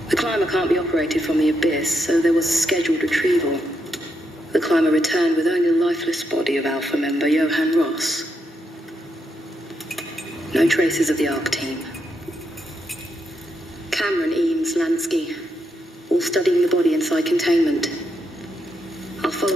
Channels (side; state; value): both; normal; correlation 0.81